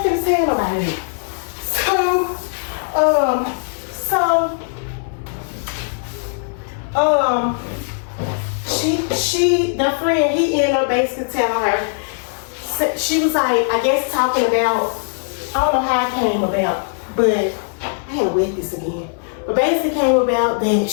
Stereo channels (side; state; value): right; silent; digital silence